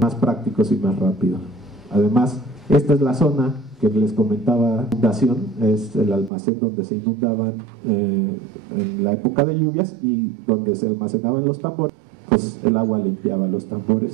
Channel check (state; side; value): drops out; left; at 6.3 s